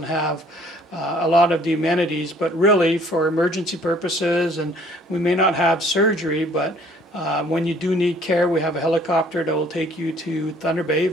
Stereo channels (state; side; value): normal; both; correlation 0.58